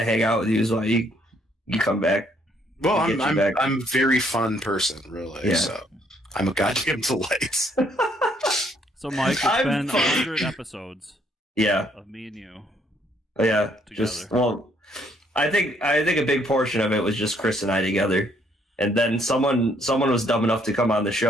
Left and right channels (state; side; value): normal; both; correlation 0.68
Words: hang out with you. Is why you come back. Well, I'm a very fun person, really. Yeah. So I'm a goddamn delight. So, Mike, it's been 100 episodes. Yeah. Of me and you. Yeah. Together. I think a big portion of it was just Chris and I together, and then someone was dumb enough to come on the